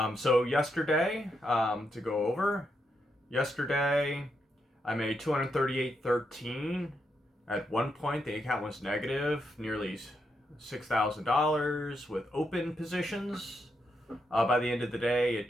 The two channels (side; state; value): both; normal; correlation 0.81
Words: So yesterday, to go over, yesterday I made 238.13. At one point, the account was negative, nearly $6,000 with open positions. By the end of the day, it